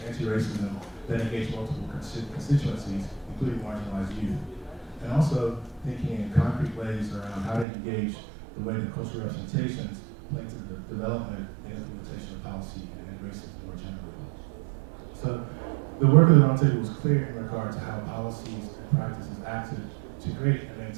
anti-racism that engage multiple constituencies, including marginalized youth, and also thinking in concrete ways around how to engage the way that cultural representations play into the development and implementation of policy and racism more generally. So the work of the Roundtable was clear in regard to how policies and practices acted to create and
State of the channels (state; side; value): drops out; left; at 7.7 s